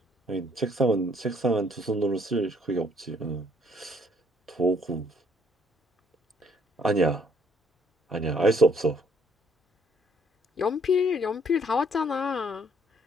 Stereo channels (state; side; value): normal; both; correlation 0.65